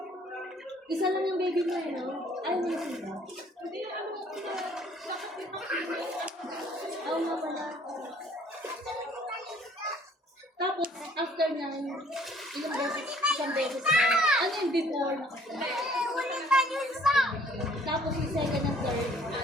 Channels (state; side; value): normal; both; correlation 0.58